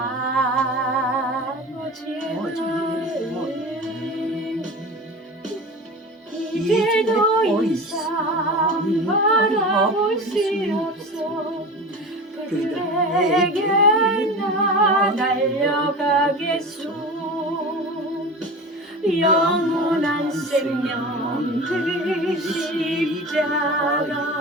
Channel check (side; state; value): both; normal; correlation 0.32